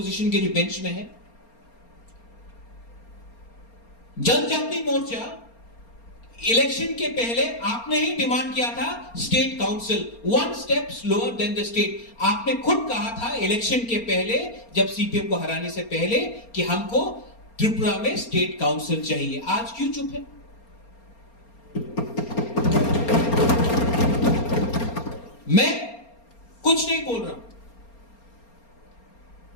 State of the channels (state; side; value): late; right; 4.3 ms